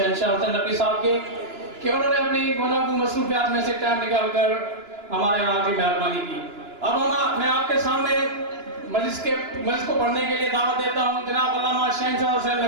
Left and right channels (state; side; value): late; left; 2.9 ms